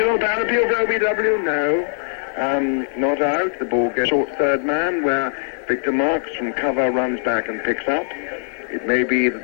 down appeal for OBW. No. Not out. The ball goes short third man, where Victor Marks from cover runs back and picks up. It may be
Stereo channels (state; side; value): silent; right; digital silence